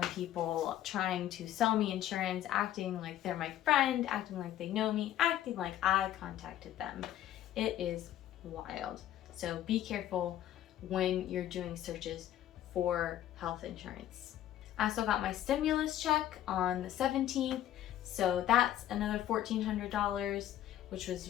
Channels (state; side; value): quieter; right; 12.2 dB